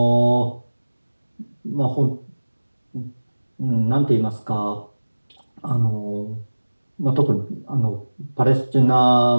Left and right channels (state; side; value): inverted; both; correlation -1.00